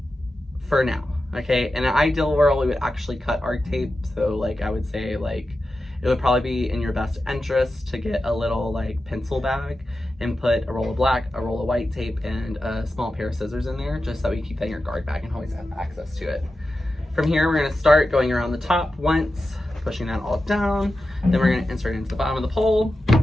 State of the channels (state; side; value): normal; both; correlation 0.92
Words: for now, okay? In an ideal world, we would actually cut our tape. So like I would say like, it would probably be in your best interest to get a little like pencil bag and put a roll of black, a roll of white tape, and a small pair of scissors in there, just so we keep that in your guard bag and always have access to it. From here, we're gonna start going around the top once, pushing that all down. Then we're gonna insert it into the bottom of the pole,